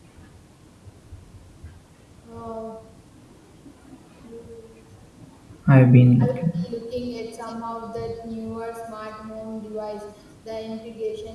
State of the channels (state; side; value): identical; both; correlation 1.00